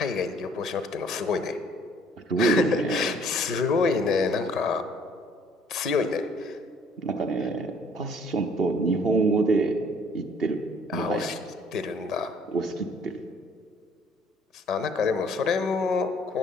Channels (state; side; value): normal; both; correlation 0.59